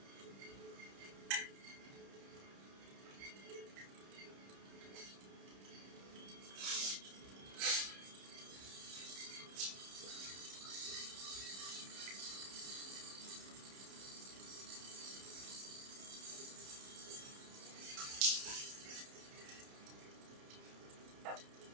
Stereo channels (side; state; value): left; late; 30 ms